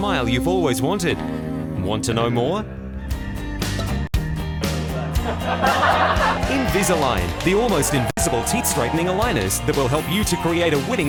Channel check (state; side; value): identical; both; correlation 1.00